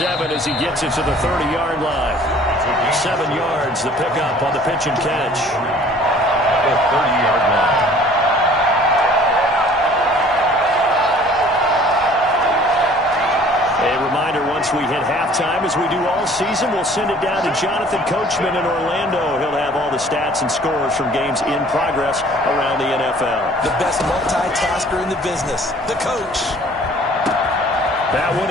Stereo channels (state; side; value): normal; both; correlation 0.52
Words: as he gets it to the 30-yard line. 7 yards, the pickup on the pitch and catch. The 30-yard line. A reminder, once we hit halftime, as we do all season, we'll send it down to Jonathan Coachman in Orlando. He'll have all the stats and scores from games in progress around the NFL. The best multitasker in the business, the coach. That one